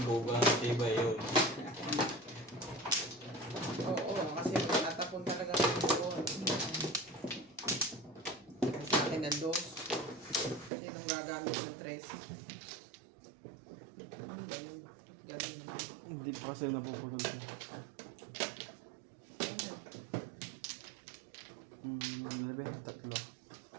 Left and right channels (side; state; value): left; drops out; at 10.7 s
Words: tibay yun. Oo, kasi tatapon talaga ng doon. Sa akin ang dos. Sinong gagamit ng tres? Galing. Galing. Hindi pa kasi napupulog ko. Tatlo.